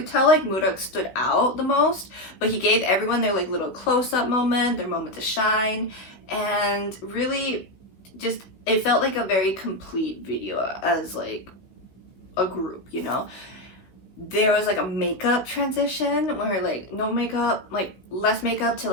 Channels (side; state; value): right; late; 16 ms